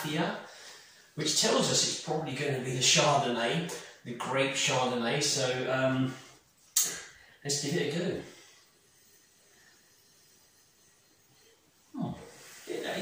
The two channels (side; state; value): both; identical; correlation 1.00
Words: which tells us it's probably going to be the Chardonnay, the grape Chardonnay. So let's give it a go.